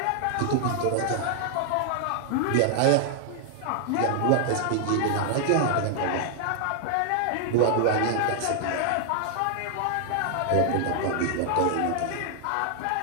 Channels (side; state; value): both; different; correlation 0.00